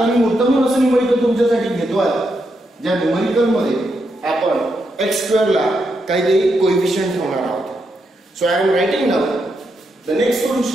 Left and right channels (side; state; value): both; normal; correlation 0.82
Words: मी मुद्दामून असं न्यूमरिकल तुमच्यासाठी घेतो आहे ज्या न्यूमरिकल मध्ये आपण x² ला काहीतरी कोएफिशियंट ठेवणार आहोत so I am writing now the next